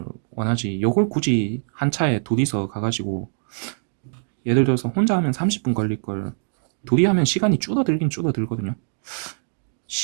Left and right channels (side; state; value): left; silent; digital silence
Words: 원하지, 요걸 굳이 한 차에 둘이서 가가지고, 예를 들어서 혼자 하면 30분 걸릴 걸 둘이 하면 시간이 줄어들긴 줄어들거든요.